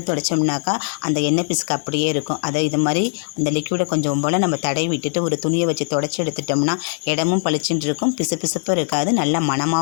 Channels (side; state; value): right; silent; 65 dB below the other